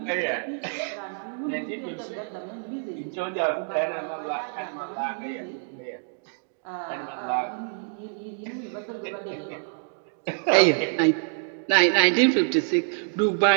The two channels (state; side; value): silent; left; digital silence